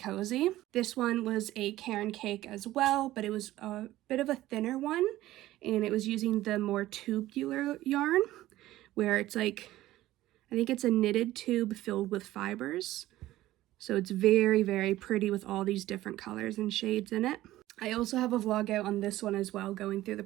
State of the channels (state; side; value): quieter; left; 15.6 dB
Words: This one was a Caron cake as well, but it was a bit of a thinner one, and it was using the more tubular yarn, where it's like, I think it's a knitted tube filled with fibers. So it's very, very pretty with all these different colors and shades in it. I also have a vlog out on this one as well, going through the